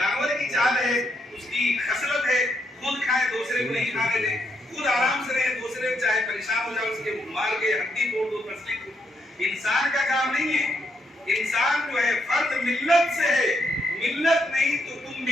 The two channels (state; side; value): normal; both; correlation 0.77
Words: کی چال ہے، اس کی خصلت ہے، خود کھائے دوسرے کو نہیں کھانے دے، خود آرام سے رہے، دوسرے چاہے پریشان ہو جائے اس کے مار کے ہڈی توڑ دو، پسلی کو۔ انسان کا کام نہیں ہے، انسان جو ہے فرد ملت سے ہے، ملت نہیں تو تم